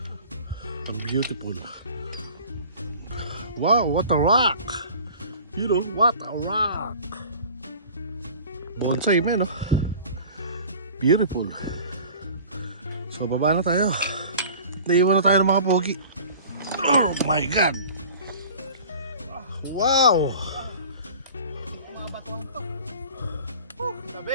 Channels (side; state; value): both; inverted; correlation -0.43